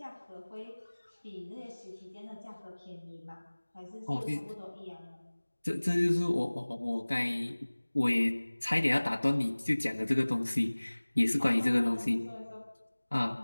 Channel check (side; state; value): both; inverted; correlation -1.00